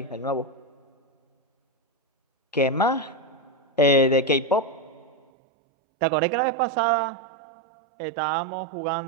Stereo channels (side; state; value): left; drops out; at 5.2 s